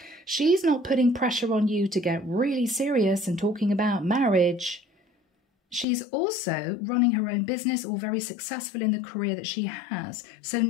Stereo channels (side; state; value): right; drops out; at 5.9 s